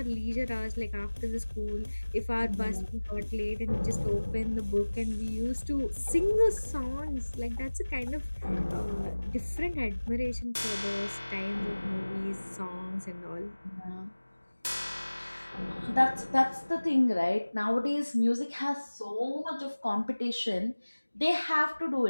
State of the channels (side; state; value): both; inverted; correlation -1.00